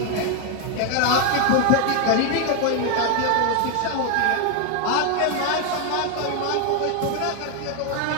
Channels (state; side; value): different; both; correlation 0.01